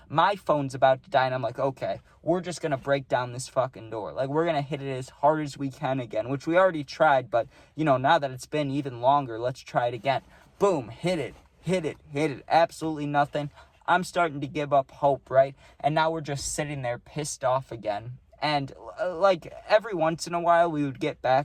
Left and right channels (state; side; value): identical; both; correlation 1.00